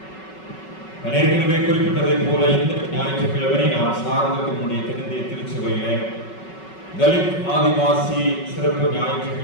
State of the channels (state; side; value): late; right; 5.3 ms